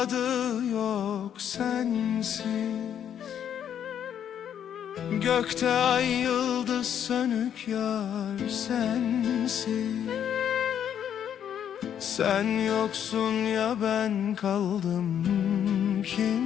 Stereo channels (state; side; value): quieter; right; 9.3 dB